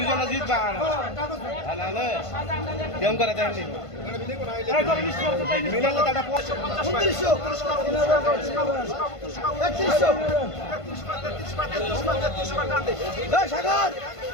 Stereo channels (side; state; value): right; late; 1.5 ms